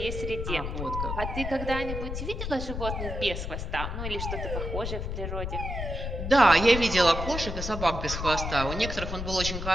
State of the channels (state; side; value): noise; left; rumble, 4 dB below the sound